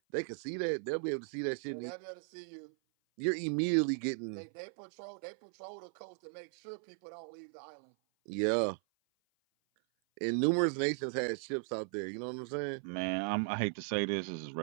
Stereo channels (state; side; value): silent; left; 53 dB below the other